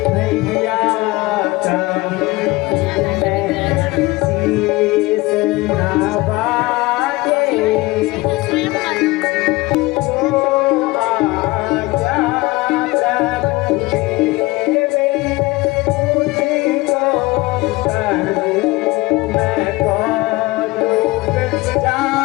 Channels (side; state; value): right; quieter; 21.2 dB